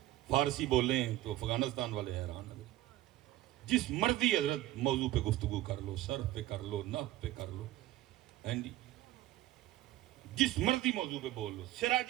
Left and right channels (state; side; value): quieter; left; 15.4 dB